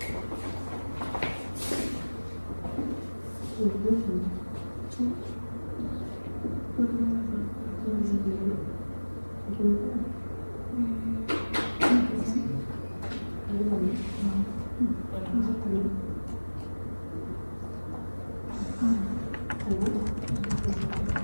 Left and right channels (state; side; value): inverted; both; correlation -1.00